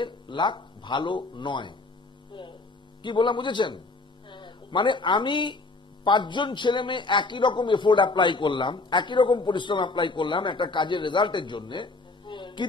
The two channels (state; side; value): quieter; right; 3.4 dB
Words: লাক ভালো নয়। কি বললাম বুঝেছেন? মানে আমি 5 জন ছেলে মেয়ে একই রকম এফোর্ট অ্যাপ্লাই করলাম, একই রকম পরিশ্রম অ্যাপ্লাই করলাম একটা কাজের রেজাল্টের জন্য,